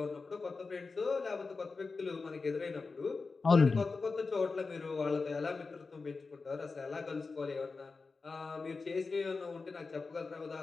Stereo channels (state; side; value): quieter; right; 4.2 dB